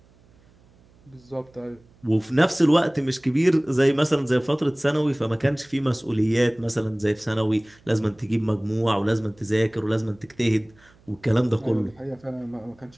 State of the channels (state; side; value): noise; right; hum, 30 dB below the sound